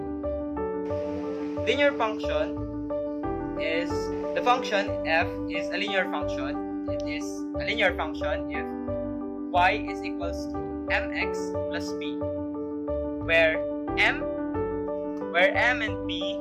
Linear function is the function f is a linear function. It is a linear function if y is equals to mx plus b, where m and b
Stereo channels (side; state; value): both; identical; correlation 1.00